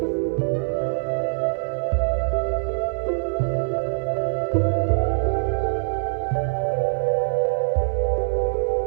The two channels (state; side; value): silent; left; digital silence